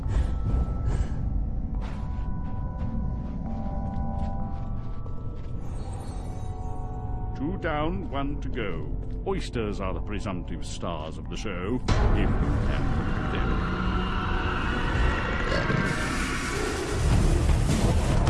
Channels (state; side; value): identical; both; correlation 1.00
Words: down, one to go. Oysters are the presumptive stars of the show, if you can them.